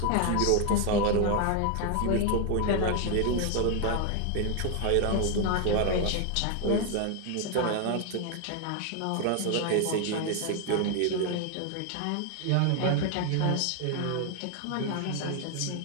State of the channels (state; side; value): different; both; correlation 0.00